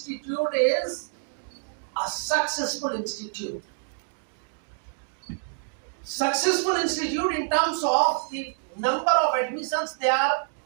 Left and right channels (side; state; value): left; silent; digital silence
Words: is a successful institute. Successful institute in terms of the number of admissions they are